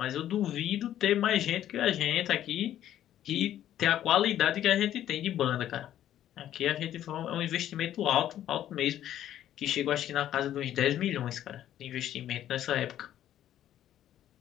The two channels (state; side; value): quieter; right; 11.7 dB